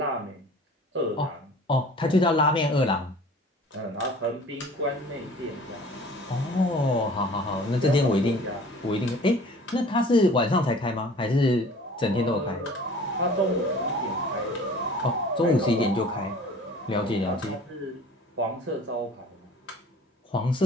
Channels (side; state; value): both; normal; correlation 0.47